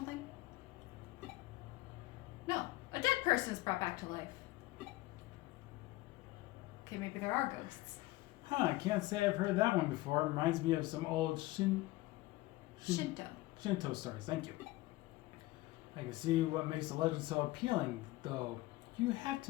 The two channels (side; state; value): right; quieter; 18.8 dB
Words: No. A dead person is brought back to life. Okay, maybe there are ghosts. Huh, I can't say I've heard that one before. It reminds me of some old Shinto stories. Thank you. I can see what makes the legend so appealing, though. You have